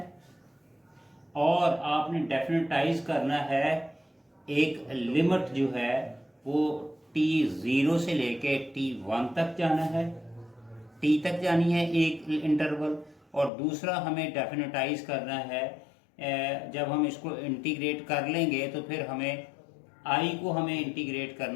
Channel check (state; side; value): drops out; right; at 13.5 s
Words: और आपने डेफिनेटाइज करना है एक लिमिट जो है वो t0 से लेके t1 तक जाना है, t तक जानी है एक इंटरवल। और दूसरा हमें डेफिनेटाइज करना है जब हम इसको इंटीग्रेट कर लेंगे तो फिर हमें i को हमें इंटीग्रेट